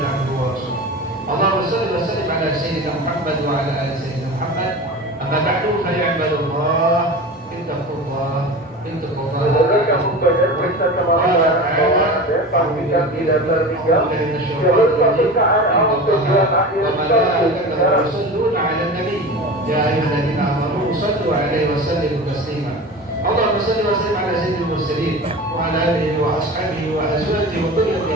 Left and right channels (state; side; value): normal; both; correlation 0.32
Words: abduhu wa rasuluh. Allahumma shalli wa sallim ala sayyidina Muhammad wa ala ali sayyidina Muhammad. Amma ba'du fa ya ibadallah, ittaqullah, ittaqullah. Kamu belajar periksa kemampuan pastikan tidak tertinggal jalur pemeriksaan awal tujuan akhir Rasulullah ala nabi ya ayyuhalladzina amanu sallu alaihi wa sallimu taslima. Allahumma salli wa sallim ala sayyidil mursalin wa ala alihi wa ashabihi wa azwajihi wa